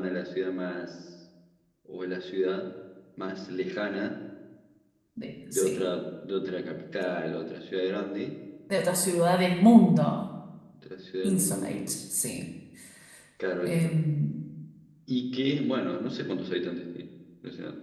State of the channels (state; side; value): identical; both; correlation 1.00